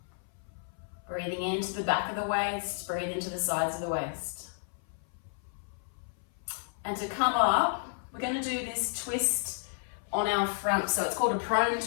Breathing into the back of the waist, breathe into the sides of the waist. And to come up, we're going to do this twist on our front. So it's called a prone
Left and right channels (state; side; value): silent; right; 57 dB below the other